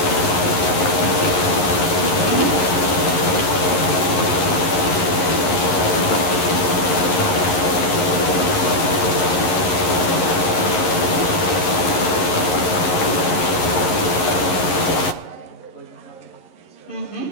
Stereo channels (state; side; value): late; right; 11 ms